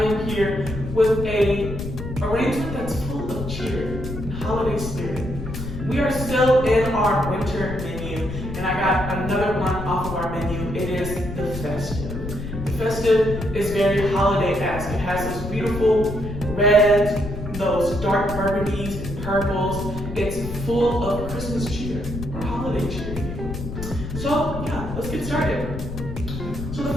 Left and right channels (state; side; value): noise; left; rumble, 7 dB below the sound